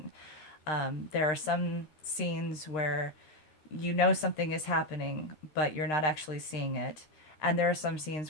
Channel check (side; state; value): right; late; 13 ms